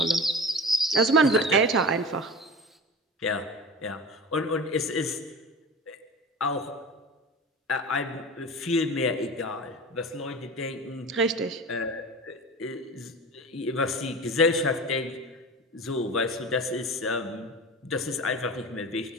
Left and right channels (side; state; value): both; normal; correlation 0.32